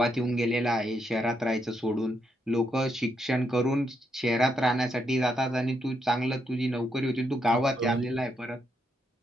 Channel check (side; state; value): both; normal; correlation 0.79